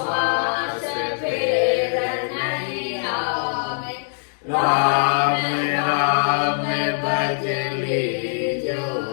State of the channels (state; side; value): silent; right; digital silence